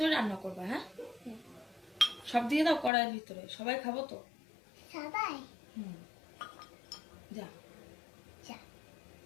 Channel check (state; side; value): drops out; right; at 2.9 s